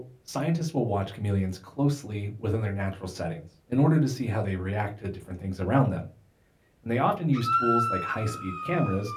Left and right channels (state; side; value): identical; both; correlation 1.00